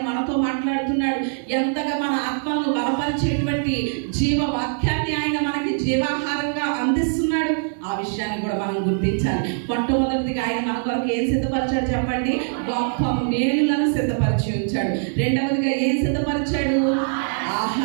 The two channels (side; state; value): left; silent; 64 dB below the other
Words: మనతో మాట్లాడుతున్నాడు, ఎంతగా మన ఆత్మలను బలపరిచేటువంటి జీవ వాక్యాన్ని ఆయన మనకి జీవాహారంగా అందిస్తున్నాడు. ఆ ఆ విషయాన్ని కూడా మనం గుర్తించాలి. మొట్టమొదటిదిగా ఆయన మన కొరకు ఏం సిద్ధపరిచాడు చెప్పండి? గొప్ప మేలులను సిద్ధపరిచి ఉంచాడు. రెండవదిగా ఏం సిద్ధపరిచాడు?